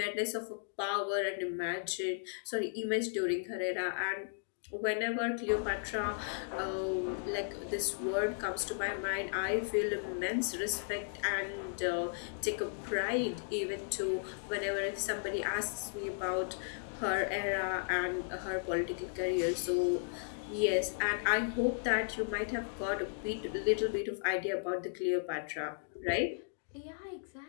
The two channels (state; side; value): silent; right; digital silence